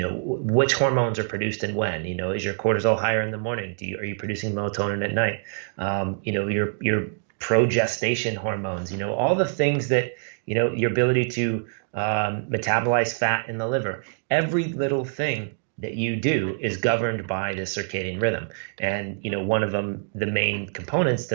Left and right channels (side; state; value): left; silent; digital silence